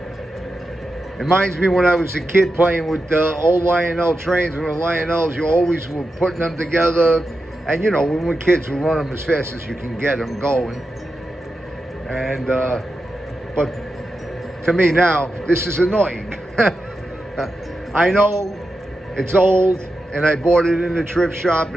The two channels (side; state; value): both; normal; correlation 0.89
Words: Reminds me when I was a kid playing with the old Lionel trains. With the Lionels, you always were putting them together. And you know, when we're kids, we run them as fast as you can get them going. And, but to me now, this is annoying. I know it's old, and I bought it in the thrift shop,